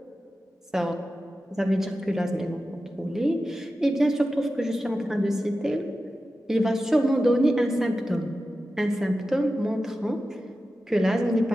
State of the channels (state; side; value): normal; both; correlation 0.93